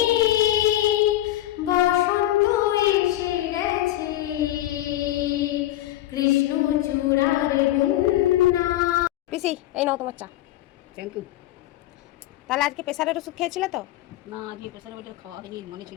বসন্ত এসে গেছে, কৃষ্ণচূড়ার বন্যা। পিসি এই নাও তোমার চা। Thank you. তাহলে আজকে প্রেসারের ওষুধ খেয়েছিলে তো? না আজকে প্রেশার ওটা খাওয়া হয়নি, মনে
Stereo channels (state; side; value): quieter; right; 14.7 dB